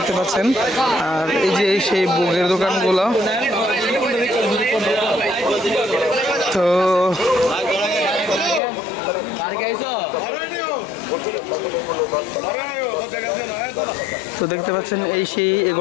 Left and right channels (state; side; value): drops out; right; at 8.6 s